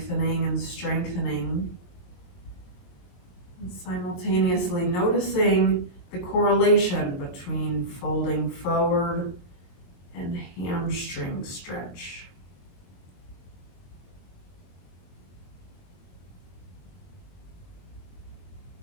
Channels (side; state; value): right; late; 22 ms